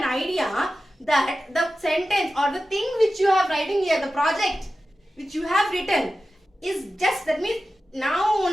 idea that the sentence or the thing which you have writing here, the project which you have written is just, that means now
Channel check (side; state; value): both; normal; correlation 0.94